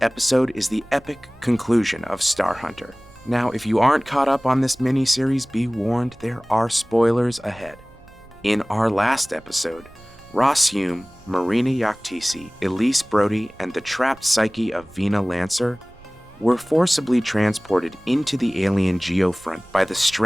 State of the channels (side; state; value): right; noise; rumble, 25 dB below the sound